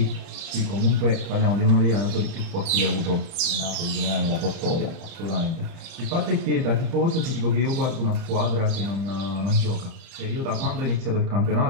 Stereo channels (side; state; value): left; late; 31 ms